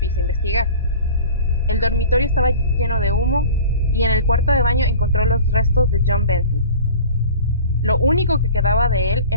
a investigar. El dormitorio estaba lleno de humo y en el cuarto de baño encontró los restos de John Bentley. Lo único que quedaba de él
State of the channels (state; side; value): inverted; both; correlation -0.41